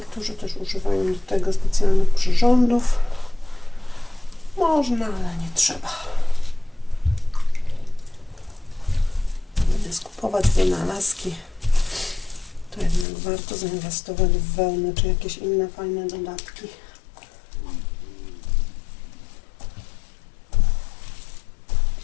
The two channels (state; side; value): drops out; right; at 13.1 s